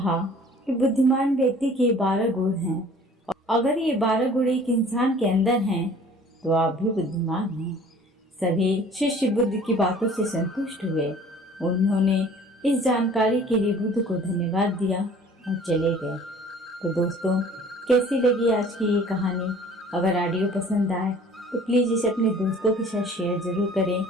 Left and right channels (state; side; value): normal; both; correlation 0.50